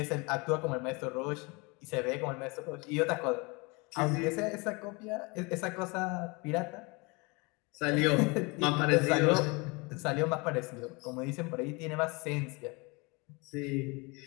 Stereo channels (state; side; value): quieter; right; 27.8 dB